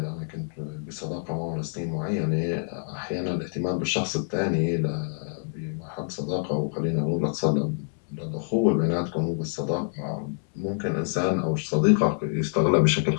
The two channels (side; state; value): right; silent; 61 dB below the other